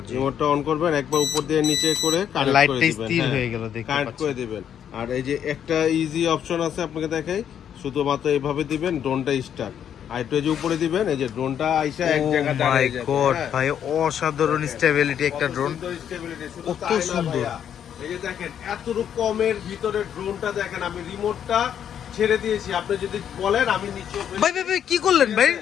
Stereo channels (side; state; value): right; quieter; 9.1 dB